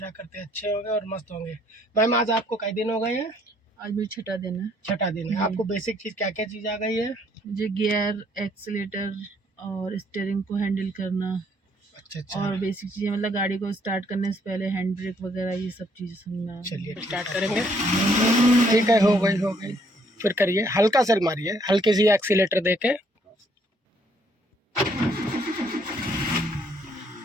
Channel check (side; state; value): both; normal; correlation 0.66